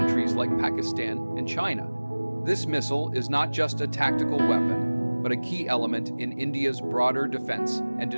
like Pakistan and China. This missile is not just a tactical weapon, but a key element in India's broader defense and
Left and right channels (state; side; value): inverted; both; correlation -1.00